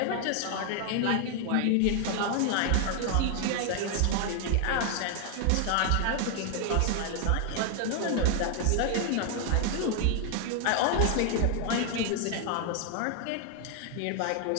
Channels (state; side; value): different; both; correlation 0.00